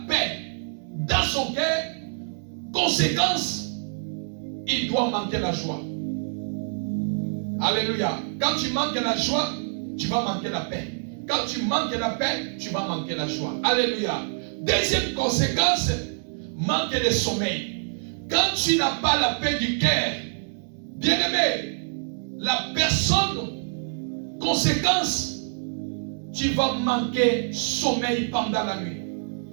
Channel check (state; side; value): silent; left; digital silence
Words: paix dans son cœur. Conséquence, il doit manquer la joie. Alléluia. Quand tu manques la joie, tu vas manquer la paix. Quand tu manques la paix, tu vas manquer la joie. Alléluia. Deuxième conséquence, manque de sommeil. Quand tu n'as pas la paix du cœur, bien-aimé, la personne, conséquence, tu vas manquer sommeil pendant la nuit.